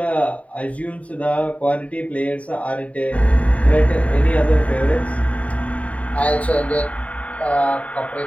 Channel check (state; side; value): late; right; 0.067 ms